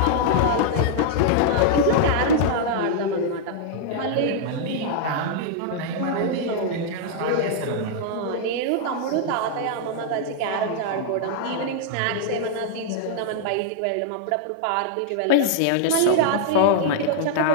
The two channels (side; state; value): both; different; correlation -0.01